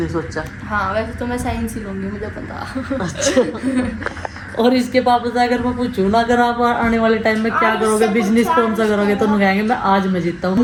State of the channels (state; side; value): identical; both; correlation 1.00